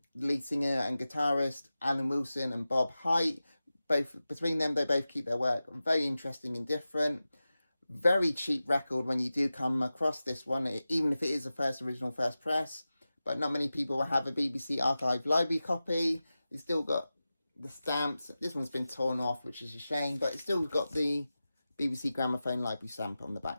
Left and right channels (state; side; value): inverted; both; correlation -0.95